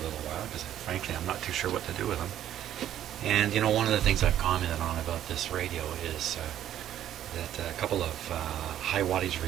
while because frankly I'm not too sure what to do with him. And you know, one of the things I've commented on about this radio is that a couple of high wattage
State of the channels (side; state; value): left; quieter; 11.4 dB